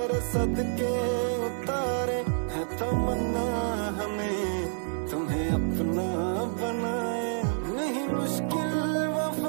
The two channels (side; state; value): left; silent; digital silence